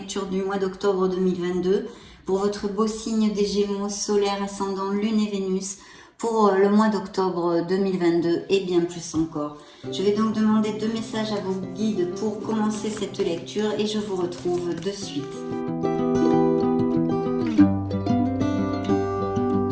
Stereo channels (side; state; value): both; identical; correlation 1.00